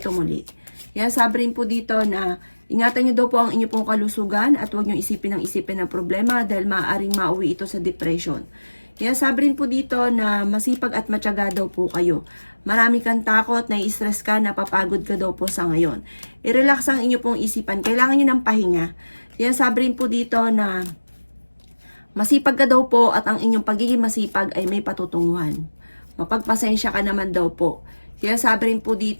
muli. Kaya sabi rin po dito na ingatan nyo daw po ang inyong pong kalusugan at huwag nyo isipin ng problema dahil maaaring mauwi ito sa depression. Kaya sabi rin po dito na masipag at matyaga daw po kayo. Marami kang takot, nai-stress ka, napapagod ka daw po sa ngayon. I-relax ang inyo pong isipan. Kailangan nyo ng pahinga. Kaya sabi rin po dito na masipag ka daw po at ang inyong pagiging masipag ay may patutunguhan. Mapagpasensya ka naman daw po. Kaya sabi rin po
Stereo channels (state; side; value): inverted; both; correlation -1.00